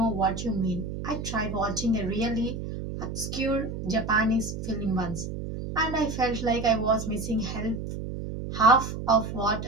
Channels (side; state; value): right; noise; hum, 6 dB below the sound